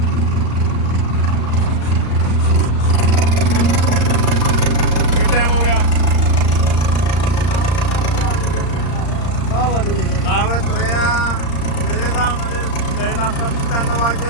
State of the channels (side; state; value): right; late; 35 ms